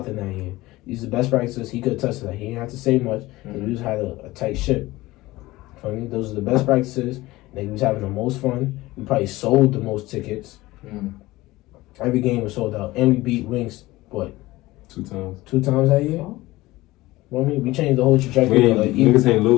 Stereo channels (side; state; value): right; quieter; 18.9 dB